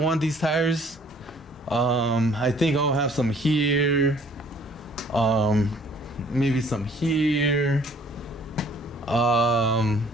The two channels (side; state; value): both; normal; correlation 0.57